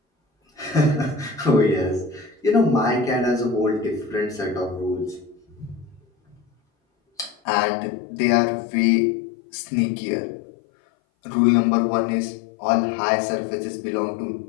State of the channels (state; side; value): drops out; right; at 7.4 s